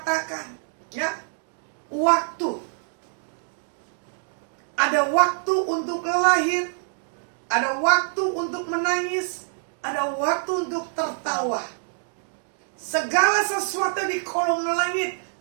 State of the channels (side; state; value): left; silent; digital silence